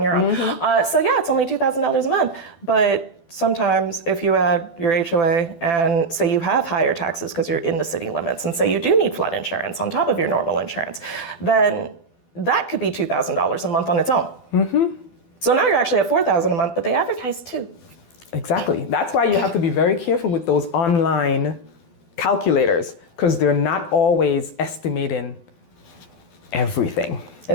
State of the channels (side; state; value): right; late; 12 ms